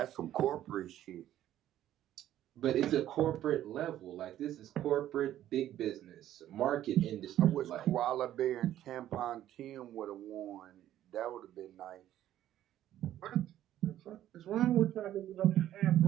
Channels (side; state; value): left; quieter; 12.4 dB